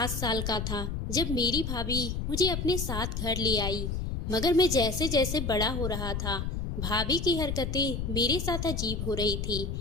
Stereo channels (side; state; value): left; noise; rumble, 3 dB below the sound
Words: साल का था जब मेरी भाभी मुझे अपने साथ घर ले आई। मगर मैं जैसे जैसे बड़ा हो रहा था, भाभी की हरकतें मेरे साथ अजीब हो रही थी।